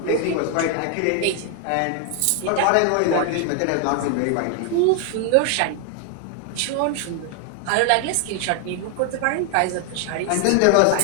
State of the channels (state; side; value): different; both; correlation 0.00